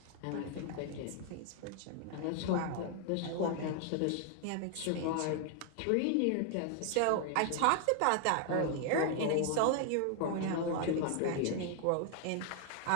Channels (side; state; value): both; different; correlation 0.00